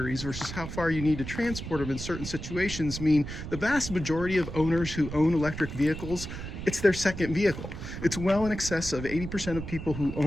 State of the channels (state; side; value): noise; right; rumble, 8 dB below the sound